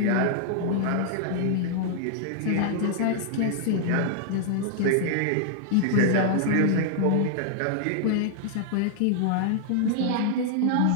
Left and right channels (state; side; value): different; both; correlation -0.01